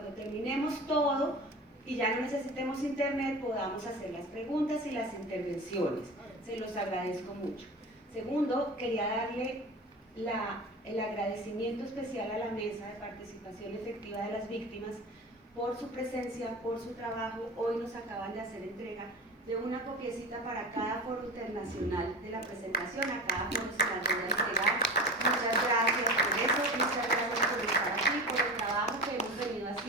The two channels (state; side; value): normal; both; correlation 0.31